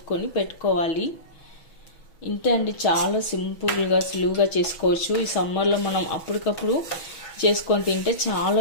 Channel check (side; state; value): right; late; 6.1 ms